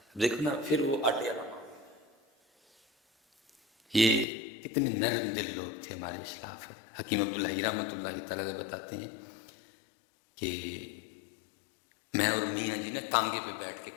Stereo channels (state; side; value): drops out; right; at 4.2 s